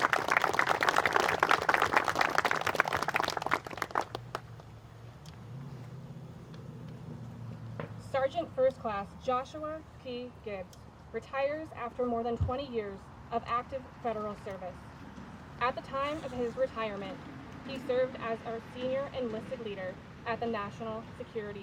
Sergeant First Class Joshua P. Gibbs retires after more than 20 years of active federal service. At the time of his retirement, he served as our senior enlisted leader at the National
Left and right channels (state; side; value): identical; both; correlation 1.00